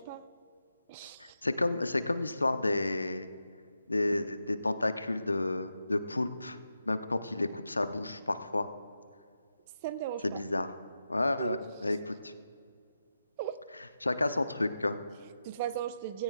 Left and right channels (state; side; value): inverted; both; correlation -0.89